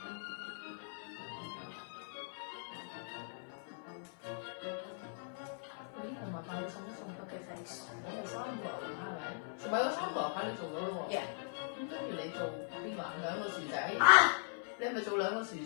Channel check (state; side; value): silent; right; 52 dB below the other